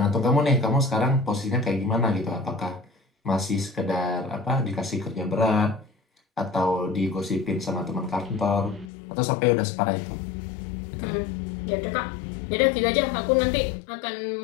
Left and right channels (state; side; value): drops out; right; at 8.9 s